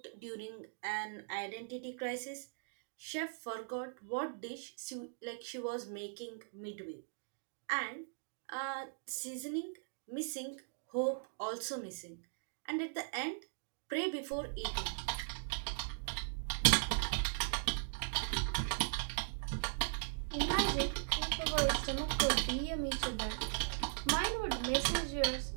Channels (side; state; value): left; silent; digital silence